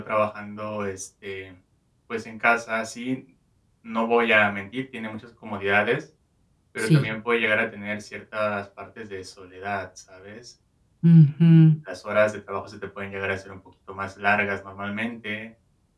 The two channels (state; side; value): identical; both; correlation 1.00